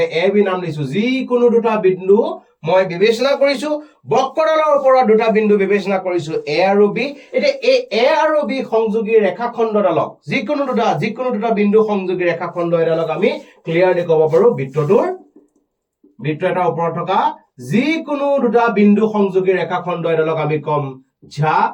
এ বি নাম দিছো যিকোনো দুটা বিন্দু মই বিবেচনা কৰিছো বক্ৰডালৰ ওপৰত দুটা বিন্দু বিবেচনা কৰিছো এ আৰু বি এতিয়া এই এ আৰু বি সংযোগী ৰেখাখণ্ডডালক যিকোনো দুটা বিন্দু সংযোগী ৰেখাখণ্ড এডালক আমি ক্লিয়াৰলি ক'ব পাৰো বৃত্ত এটাৰ ওপৰত থকা যিকোনো দুটা বিন্দু সংযোগী ৰেখাখণ্ড এডালক আমি কম ঝা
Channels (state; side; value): identical; both; correlation 1.00